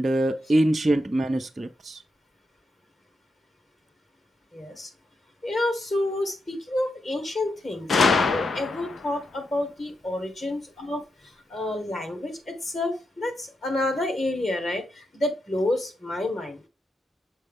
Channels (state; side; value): normal; both; correlation 0.85